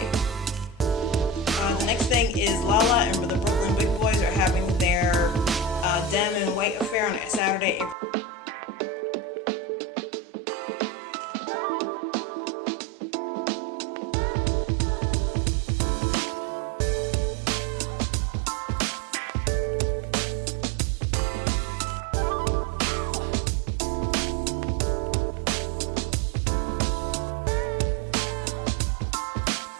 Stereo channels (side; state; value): left; drops out; at 8.0 s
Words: The next thing is Lala and the Brooklyn Big Boys are having their Dem and White Affair on Saturday, April 13th. It's $10 or $20 depending on capacity. This is in Brooklyn and should be a great time. So next we have the BBW Travel French Quarter trip. This is April 11th through the 14th. It's a little late in the game to reserve or go on the trip, but when I hit them up, they said if you wanted to go, there might